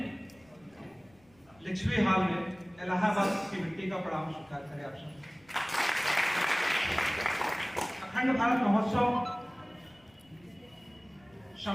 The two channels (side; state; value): left; noise; rumble, 30 dB below the sound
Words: लिच्छवी हाल में इलाहाबाद की मिट्टी का प्रणाम स्वीकार करें आप सब। अखंड भारत महोत्सव